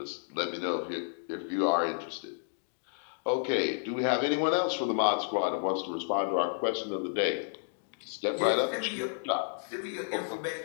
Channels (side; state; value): right; silent; digital silence